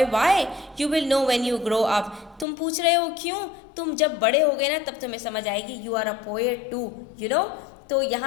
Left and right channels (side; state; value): right; drops out; at 2.5 s